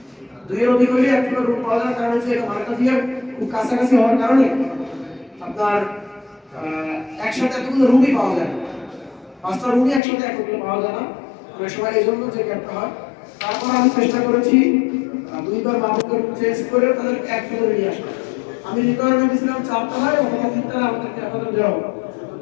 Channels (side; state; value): right; drops out; at 10.0 s